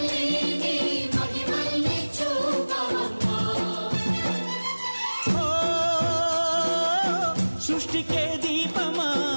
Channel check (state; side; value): inverted; both; correlation -1.00